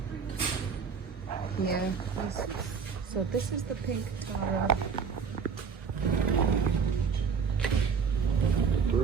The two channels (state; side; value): quieter; left; 6.0 dB